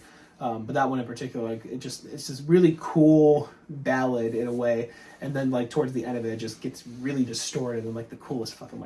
but that one in particular, like it's this really cool ballad in a way, and then like towards the end of it, it just gets really distorted in like the coolest fucking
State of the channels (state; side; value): identical; both; correlation 1.00